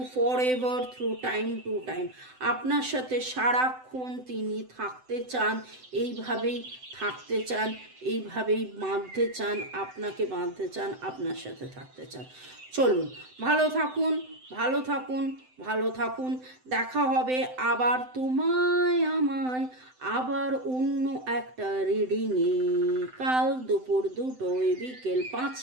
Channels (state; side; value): late; left; 7.8 ms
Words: forever through time to time. আপনার সাথে সারাক্ষণ তিনি থাকতে চান, এইভাবেই থাকতে চান, এইভাবেই বাঁধতে চান, আপনাকে বাঁধতে চান, আপনার সাথে থাকতে চান। চলুন, ভালো থাকুন, ভালো থাকুন, ভালো থাকুন। দেখা হবে আবার তোমায় আমায় আবার অন্য একটা রিডিংয়ে, কাল দুপুর 2টোয়, বিকেল